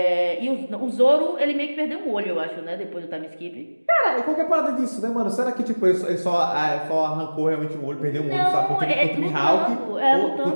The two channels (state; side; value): inverted; both; correlation -1.00